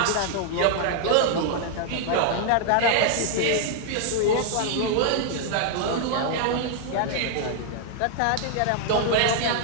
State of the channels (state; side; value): different; both; correlation -0.01